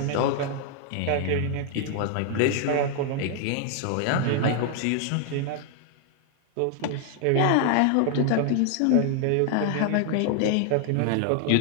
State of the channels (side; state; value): both; different; correlation 0.00